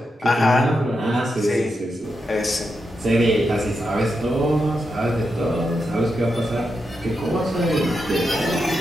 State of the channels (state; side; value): normal; both; correlation 0.86